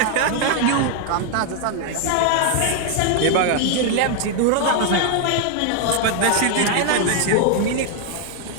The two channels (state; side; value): different; both; correlation 0.00